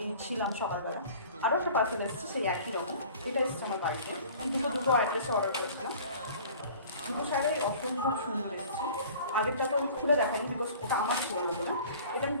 ছিলাম সকালবেলা। আরও একটা পার্সেল এসেছে সেই একই রকম, এটা এসেছে আমার বাড়িতে। আমি দুটো অ্যাড্রেসে অর্ডার করেছিলাম। দুটো শাড়ি অসম্ভব সুন্দর এসেছে। আগেরটা তো আমি খুলে দেখাইনি, বিকজ ওটা আমার ছিল না। এটা আমি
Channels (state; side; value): inverted; both; correlation -0.46